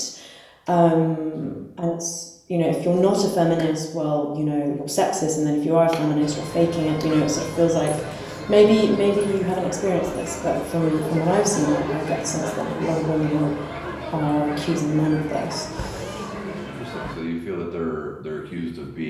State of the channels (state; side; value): identical; both; correlation 1.00